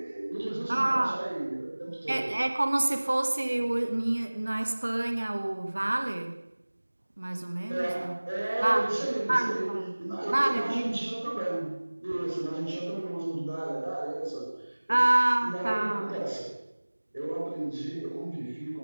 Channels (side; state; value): both; inverted; correlation -1.00